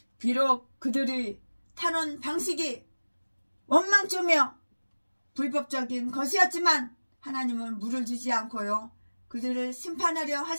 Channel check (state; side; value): inverted; both; correlation -1.00